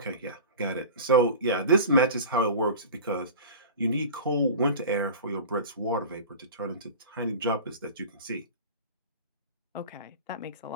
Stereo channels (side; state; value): both; inverted; correlation -0.35